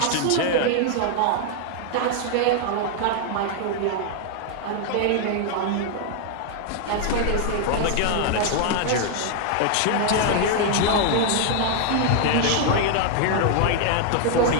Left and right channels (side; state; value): both; different; correlation 0.00